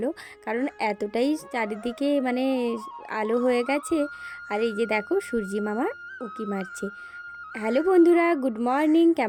কারণ এতটাই চারিদিকে মানে আলো হয়ে গেছে। আর এই যে দেখো সূর্যি মামা উঁকি মারছে। হ্যালো বন্ধুরা, গুড মর্নিং।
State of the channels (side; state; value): both; identical; correlation 1.00